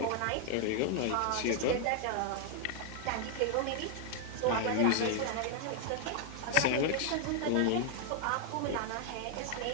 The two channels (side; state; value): both; different; correlation 0.00